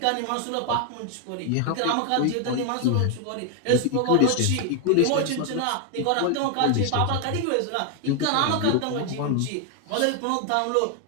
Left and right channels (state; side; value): different; both; correlation 0.00